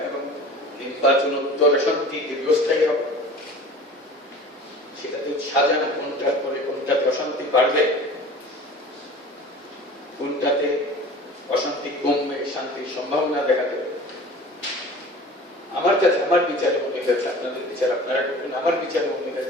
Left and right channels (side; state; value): both; normal; correlation 0.41